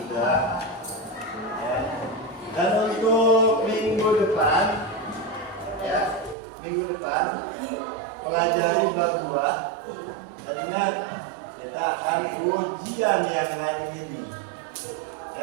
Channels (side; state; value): left; drops out; at 6.4 s